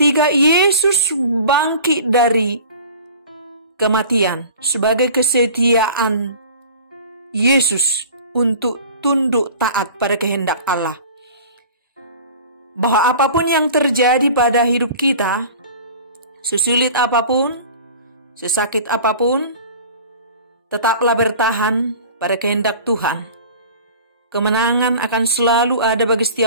Yesus bangkit dari kematian sebagai kesetiaan Yesus untuk tunduk taat pada kehendak Allah. Bahwa apapun yang terjadi pada hidup kita, sesulit apapun, sesakit apapun, tetaplah bertahan pada kehendak Tuhan. Kemenangan akan selalu ada bagi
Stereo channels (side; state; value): both; inverted; correlation -0.42